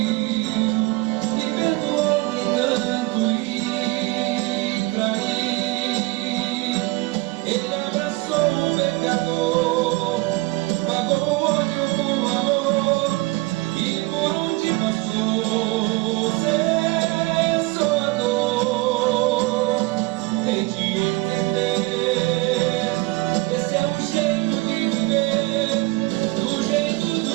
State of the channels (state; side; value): quieter; left; 21.7 dB